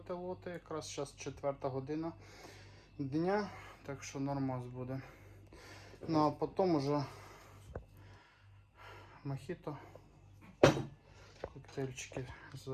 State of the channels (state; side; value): identical; both; correlation 1.00